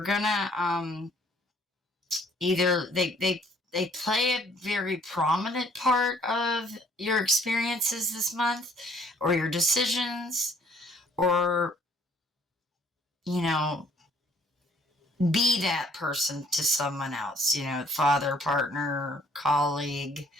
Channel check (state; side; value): normal; both; correlation 0.61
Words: either they play a very prominent part of your experiences this month, or your decisions, or, you know, be that person to someone else, you know, father, partner, colleague,